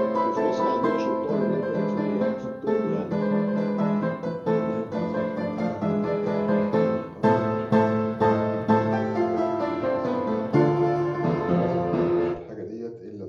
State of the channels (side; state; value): both; identical; correlation 1.00